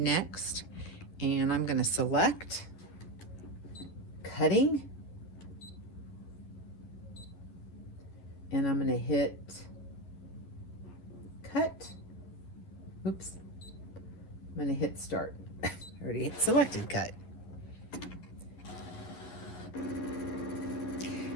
And I'm going to select cutting, and I'm going to hit cut. Oops, I'm going to hit start. I already hit selected cut.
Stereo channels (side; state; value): right; late; 11 ms